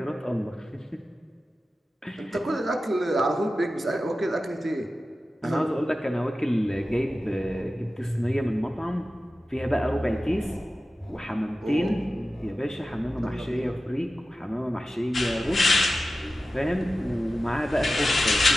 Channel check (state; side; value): normal; both; correlation 0.94